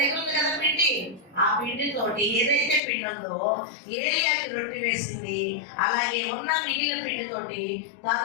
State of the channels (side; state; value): right; drops out; at 2.8 s